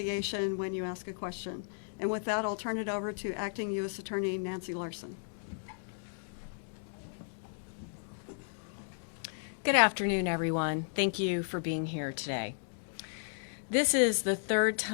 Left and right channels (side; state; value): right; silent; digital silence